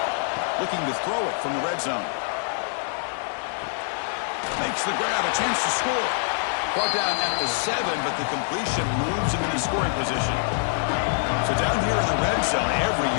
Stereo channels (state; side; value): silent; right; digital silence